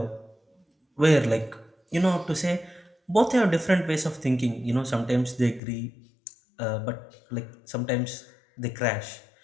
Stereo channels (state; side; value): drops out; right; at 5.6 s